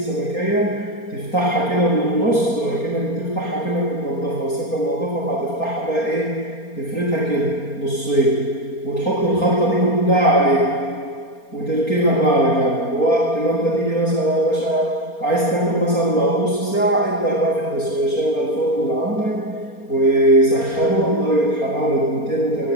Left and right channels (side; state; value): right; late; 4.3 ms